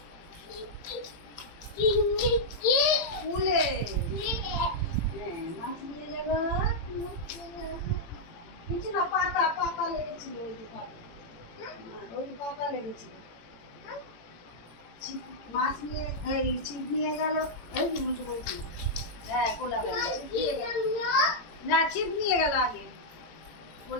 কূলে হ্যাঁ মাছ নিয়ে যাবো কিছু না পাতা পাতা লেগেছিল ওই যে পাতা ওই পাতা লেগেছিল মাছ নিয়ে এই ছিপ নিয়ে গেল ওই যে উল্টো বলছি হ্যাঁ কোলা ব্যাঙ না ছিপ নিয়ে গেল আগে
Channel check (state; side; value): late; right; 18 ms